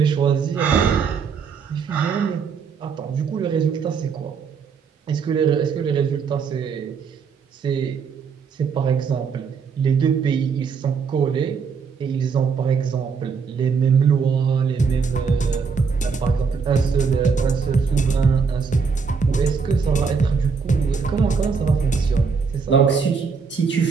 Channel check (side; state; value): left; quieter; 5.7 dB